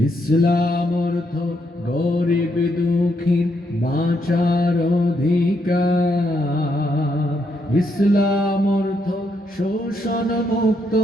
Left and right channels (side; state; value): both; normal; correlation 0.77